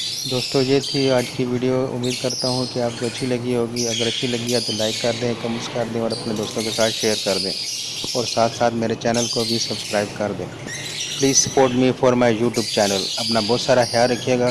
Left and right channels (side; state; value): both; identical; correlation 1.00